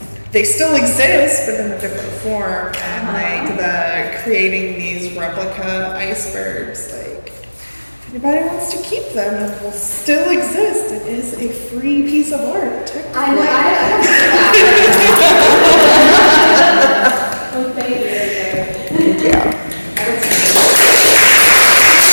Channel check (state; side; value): inverted; both; correlation -1.00